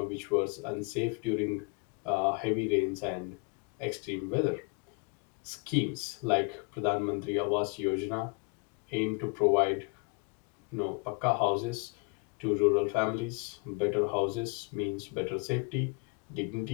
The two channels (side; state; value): right; quieter; 33.3 dB